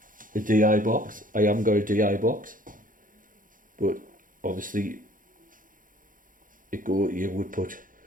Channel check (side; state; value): left; late; 0.39 ms